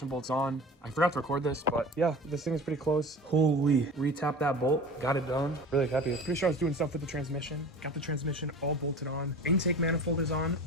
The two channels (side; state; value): both; normal; correlation 0.37